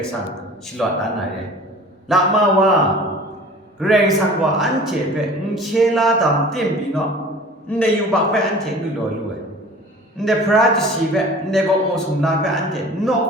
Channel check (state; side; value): normal; both; correlation 0.43